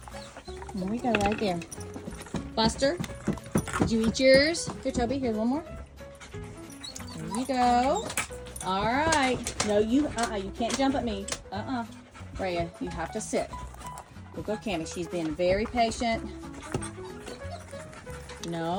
There we go, right there. Buster, did you eat yours? Here, Toby, here's one more. There you go. All right. No, you can't jump at me. Rhea, you have to sit. We'll go, Cammie. She's been very patient.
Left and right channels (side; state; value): both; identical; correlation 1.00